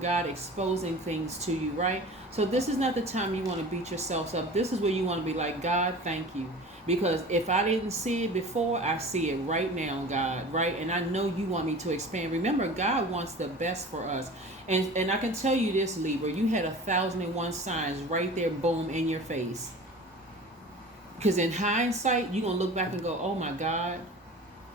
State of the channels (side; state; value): both; normal; correlation 0.39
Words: exposing things to you, right? So this is not the time you want to beat yourselves up. This is where you want to be like, God, thank you. Because if I didn't see it before, I see it right now, God, right? And I know you want me to expand. Remember, God wants the best for us. And I can tell you this, Libra, you had 1,001 signs right there, boom, in your face. Because in hindsight, you're going to look back and go, oh my God,